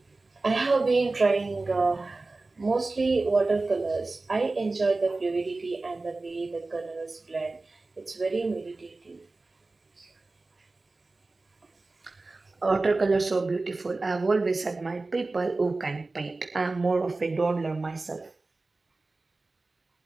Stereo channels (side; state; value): left; quieter; 3.4 dB